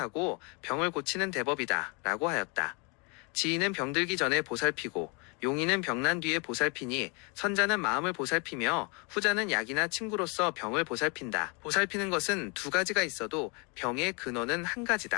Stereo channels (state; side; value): quieter; right; 32.2 dB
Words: 병을 고치는 대법이다 라고 하였다. 지인은 병들기 전에 보살피고 용인은 병난 뒤에 보살피니 선자는 마음을 보살피며 후자는 약이나 친구로서 병을 보살핀다. 보살피는 것은 두 가지가 있어도 병의 근원은 한